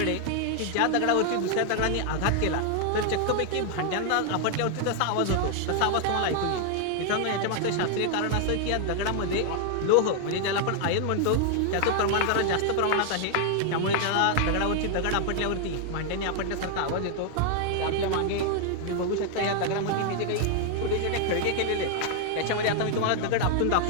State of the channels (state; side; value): different; both; correlation 0.00